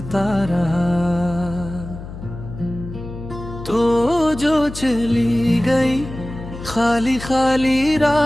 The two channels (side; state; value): left; noise; hum, 12 dB below the sound